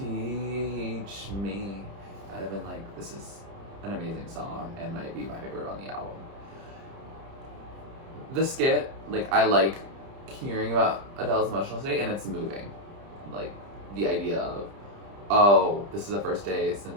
me. I'd have been like, this is an amazing song and might be my favorite on the album. The skit, like I like hearing about Adele's emotional state and it's moving. Like the idea of, oh, this is the first day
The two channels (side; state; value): left; late; 30 ms